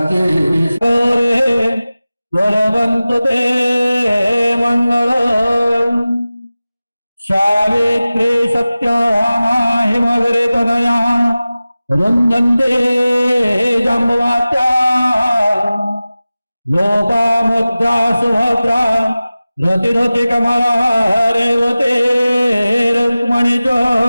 वरवन्तु ते मंगलम् सावित्री सत्यभामा हिमगिरि तनया रुन्दन्ते जम्बुवात्या लोपामुद्रा सुभद्रा रतिरति कमला रेवते रुक्मणी च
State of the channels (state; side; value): inverted; both; correlation -0.97